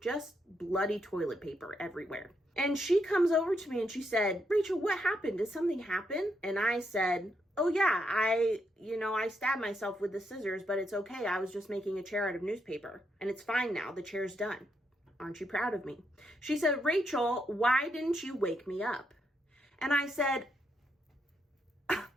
Just bloody toilet paper everywhere. And she comes over to me and she said, "Rachel, what happened? Did something happen?" And I said, "Oh yeah, I stabbed myself with the scissors, but it's okay. I was just making a chair out of newspaper. And it's fine now. The chair's done. Aren't you proud of me?" She said, "Rachel, why didn't you wake me up?" And I said,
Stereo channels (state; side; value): normal; both; correlation 0.79